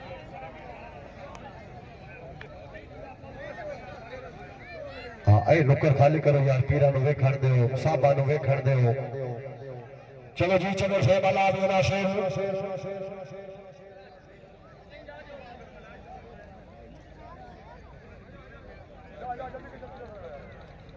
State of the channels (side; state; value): both; identical; correlation 1.00